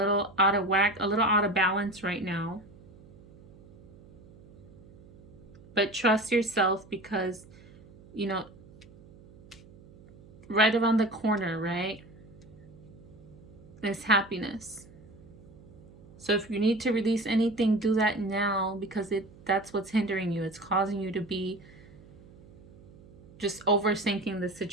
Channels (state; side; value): noise; right; hum, 22 dB below the sound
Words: out of whack, a little out of balance right now. But trust yourself, because, you know, right around the corner, right, is happiness. So if you need to release anything, do that now, because that's what's hindering you. It's causing you to be just overthinking the